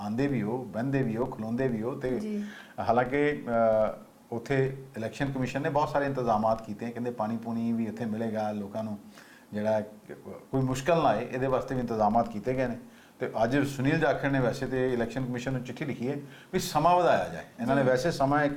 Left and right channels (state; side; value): identical; both; correlation 1.00